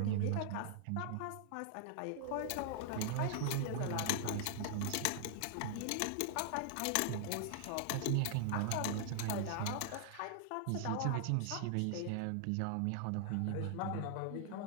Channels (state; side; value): different; both; correlation -0.01